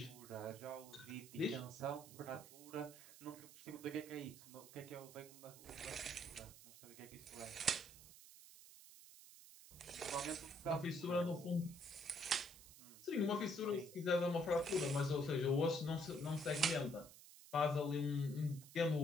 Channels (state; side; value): noise; right; hiss, 18 dB below the sound